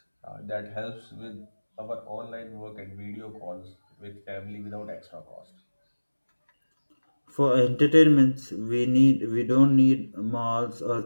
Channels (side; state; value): both; inverted; correlation -1.00